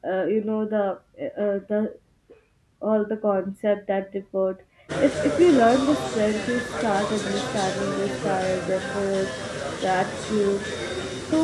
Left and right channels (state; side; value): identical; both; correlation 1.00